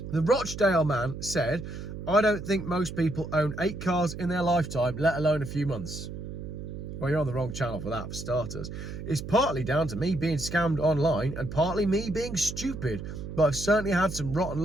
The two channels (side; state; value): right; noise; hum, 8 dB below the sound